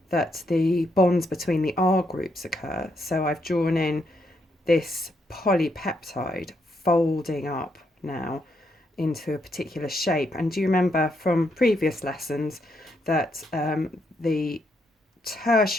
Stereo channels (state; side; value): normal; both; correlation 0.77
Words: that the bonds between the R groups occur. So I've drawn in this polypeptide folding up now into a particular shape. And do you remember from previous lessons that the